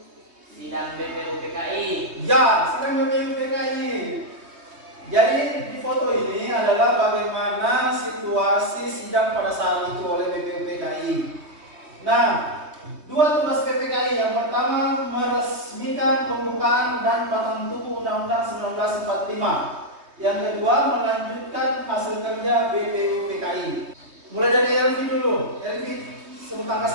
Sidang BPUPKI. Ya, sidang BPUPKI. Jadi di foto ini adalah bagaimana situasi sidang pada saat itu oleh BPUPKI. Nah, dua tugas PPKI. Yang pertama, meresmikan pembukaan dan batang tubuh Undang-Undang 1945. Yang kedua, melanjutkan hasil kerja BPUPKI. Mulai dari Elvi dulu. Elvi, sebut angka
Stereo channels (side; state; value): left; late; 3.2 ms